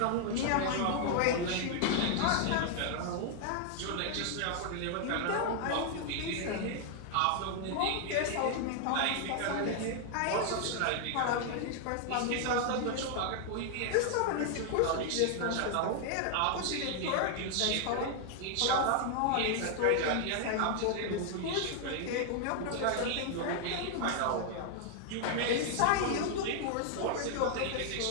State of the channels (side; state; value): both; different; correlation 0.00